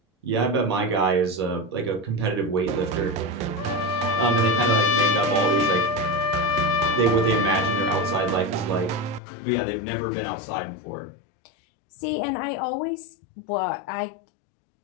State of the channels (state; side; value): drops out; right; at 9.2 s